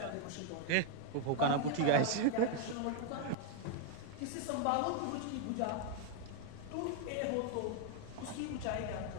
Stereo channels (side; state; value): both; different; correlation 0.00